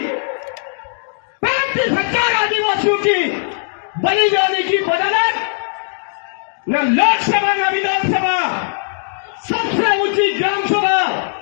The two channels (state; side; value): silent; right; digital silence